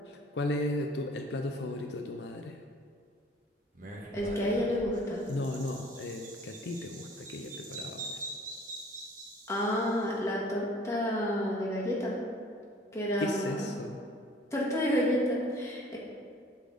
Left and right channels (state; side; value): normal; both; correlation 0.52